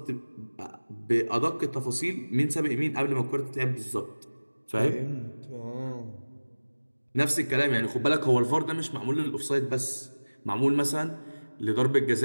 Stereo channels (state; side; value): inverted; both; correlation -1.00